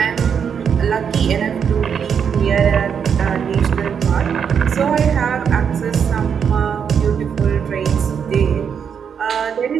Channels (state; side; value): quieter; left; 7.3 dB